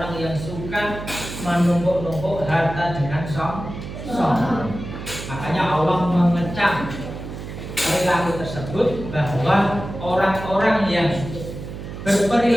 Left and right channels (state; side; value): noise; right; hum, 9 dB below the sound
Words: yang suka menumpuk-numpuk harta dengan sombong. Makanya Allah mengecam perilaku tersebut, bahwa orang-orang yang